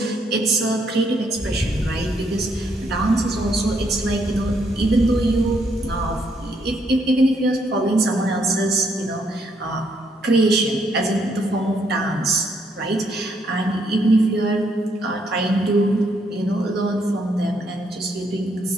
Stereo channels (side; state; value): both; normal; correlation 0.73